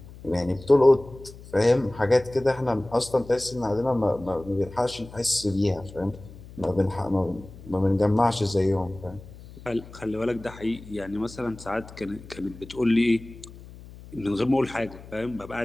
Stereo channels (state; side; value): noise; left; hum, 18 dB below the sound